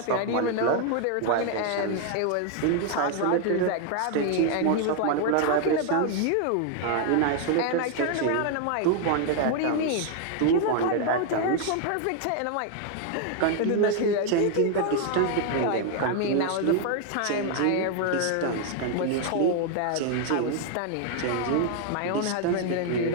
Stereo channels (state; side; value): different; both; correlation 0.00